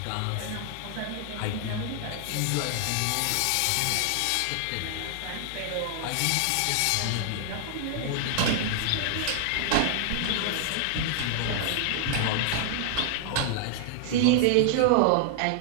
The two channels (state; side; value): different; both; correlation 0.00